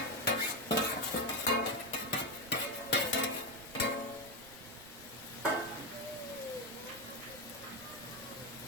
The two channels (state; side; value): noise; right; rumble, 20 dB below the sound